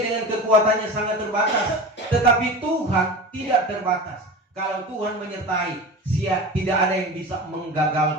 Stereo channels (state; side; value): normal; both; correlation 0.31